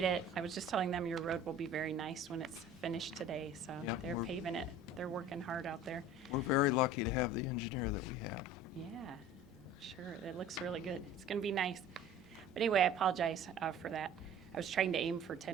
it. I was just telling them your road will be very nice when it's finished today, so Yep, they're we're- paving it. They're working hard out there. We're very lucky to have the engineer that we have. Yeah, sure. It looks really good. It's going to be nice. But anyway, I apologize for that. I was trying to aim for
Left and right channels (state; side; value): normal; both; correlation 0.44